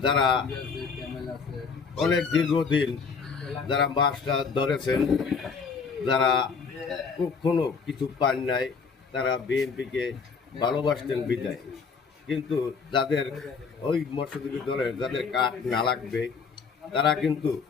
যারা অনেক দীর্ঘদিন যারা মাছটা ধরেছেন, যারা কখনো কিছু পান নাই, তারা বিএনপিকে ভালোবাসতেন বিদায়, কিন্তু যাদের ওই মৎস্যজীবী দলের যাদের কাঠ না লাগবে তারা কিন্তু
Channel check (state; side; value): quieter; right; 5.3 dB